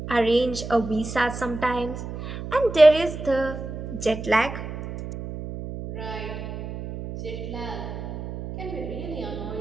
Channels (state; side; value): noise; right; hum, 8 dB below the sound